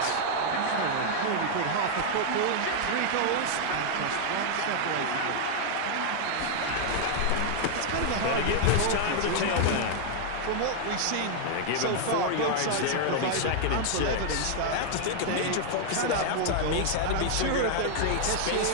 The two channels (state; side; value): different; both; correlation 0.00